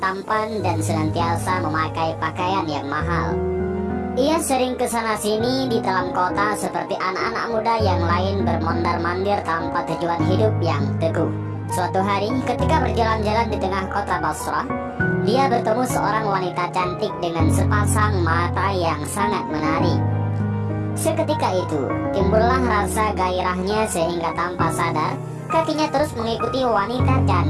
dan senantiasa memakai pakaian yang mahal. Ia sering kesana sini di dalam kota seperti anak-anak muda yang lain bermondar-mandir tanpa tujuan hidup yang teguh. Suatu hari ketika berjalan-jalan di tengah kota Basrah, dia bertemu seorang wanita cantik dengan sepasang mata yang sangat menarik. Seketika itu timbullah rasa gairahnya sehingga tanpa sadar kakinya terus mengikuti wanita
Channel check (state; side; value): identical; both; correlation 1.00